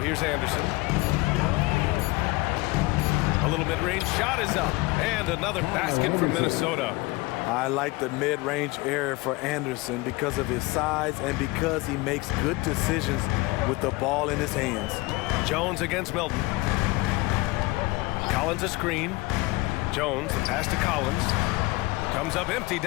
here's Anderson. A little mid-range shot is up, and another basket for Minnesota. I like the mid-range area for Anderson because of his size and because he makes good decisions with the ball in his hands. Jones against Milton. Collins a screen. Jones, the pass to Collins. Comes up empty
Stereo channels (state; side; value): quieter; right; 22.3 dB